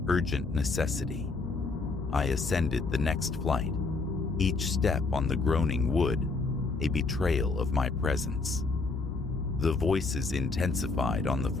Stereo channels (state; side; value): quieter; right; 3.9 dB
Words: urgent necessity. I ascended the next flight, each step on the groaning wood a betrayal of my presence. The voices intensified on the